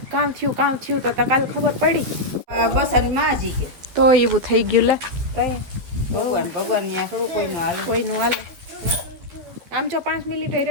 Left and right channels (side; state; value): left; late; 12 ms